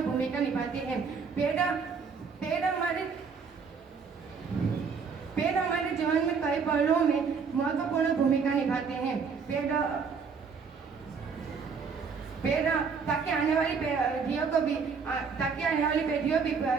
भूमिका निभाते हैं। पेड़ हमारे जीवन में कई पहलुओं में महत्वपूर्ण भूमिका निभाते हैं। पेड़ ताकि आने वाली पीढ़ियों भी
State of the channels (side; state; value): left; quieter; 5.6 dB